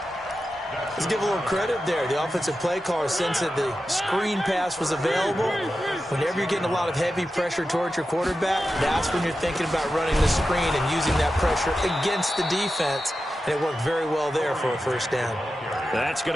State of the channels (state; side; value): normal; both; correlation 0.91